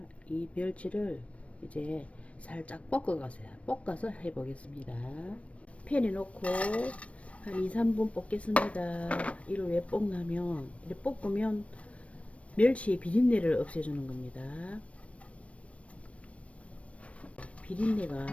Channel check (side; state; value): right; late; 0.063 ms